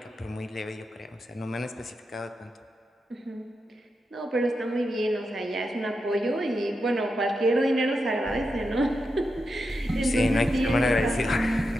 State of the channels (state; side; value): normal; both; correlation 0.87